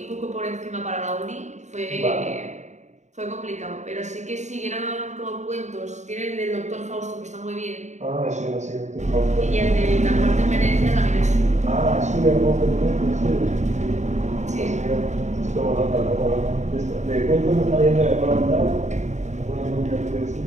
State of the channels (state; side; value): late; left; 0.34 ms